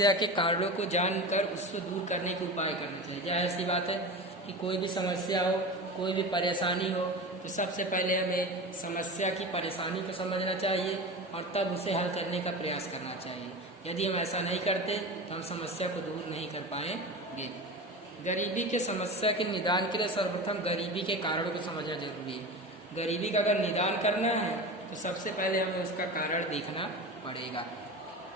के कारणों को जानकर उसको दूर करने के उपाय करने चाहिए। क्या ऐसी बात है कि कोई भी समस्या हो, कोई भी परेशानी हो, तो सबसे पहले हमें समस्या की परेशानी को समझना चाहिए और तब उसे हल करने का प्रयास करना चाहिए। यदि हम ऐसा नहीं करते तो हम समस्या को दूर नहीं कर पाएंगे। गरीबी के समस्या के निदान के लिए सर्वप्रथम गरीबी के कारणों को समझना जरूरी है। गरीबी का अगर निदान करना है तो सबसे पहले हमें उसका कारण देखना पड़ेगा।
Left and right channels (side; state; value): both; normal; correlation 0.29